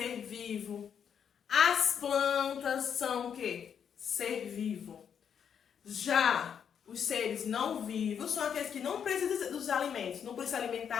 vivo. As plantas são o quê? Ser vivo. Já os seres não vivos são aqueles que não precisam dos alimentos, não precisam se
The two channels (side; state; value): right; quieter; 7.8 dB